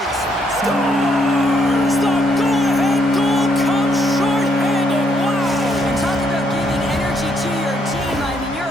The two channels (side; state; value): both; normal; correlation 0.73